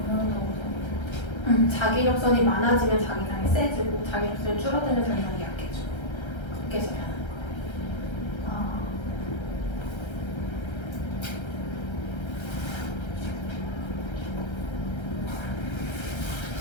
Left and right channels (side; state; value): right; late; 1.3 ms